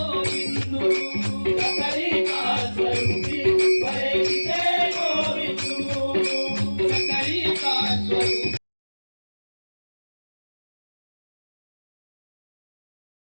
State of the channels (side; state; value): both; inverted; correlation -1.00